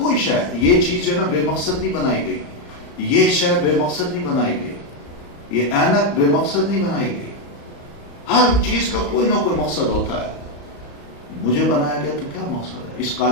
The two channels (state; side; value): late; right; 35 ms